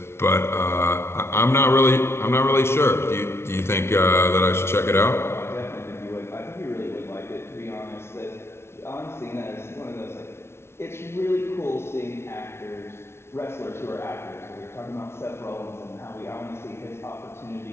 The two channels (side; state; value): right; late; 0.12 ms